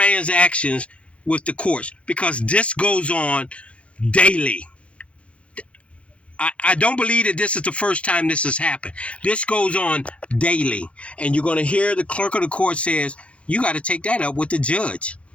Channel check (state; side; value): late; right; 0.062 ms